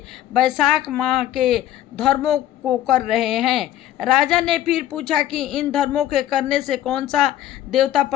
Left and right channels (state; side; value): quieter; right; 12.6 dB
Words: वैशाख माह के धर्मों को कर रहे हैं। राजा ने फिर पूछा कि इन धर्मों के करने से कौन सा देवता